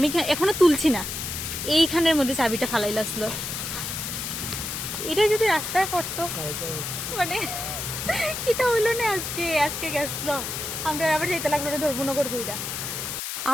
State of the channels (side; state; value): left; noise; hiss, 5 dB below the sound